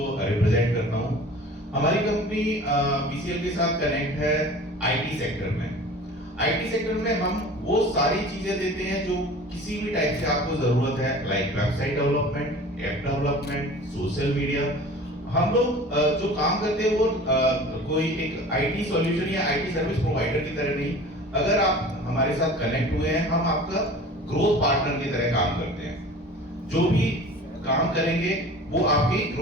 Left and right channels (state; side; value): normal; both; correlation 0.42